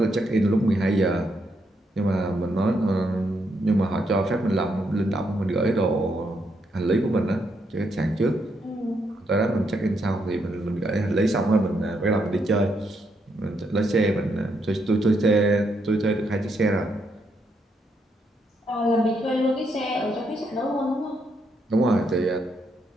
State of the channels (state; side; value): normal; both; correlation 0.78